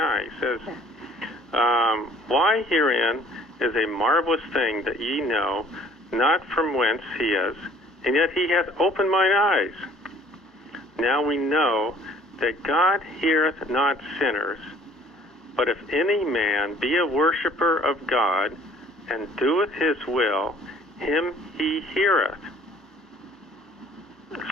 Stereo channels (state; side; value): normal; both; correlation 0.55